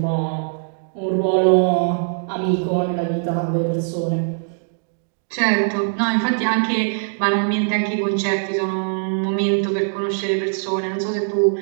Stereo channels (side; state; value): left; silent; digital silence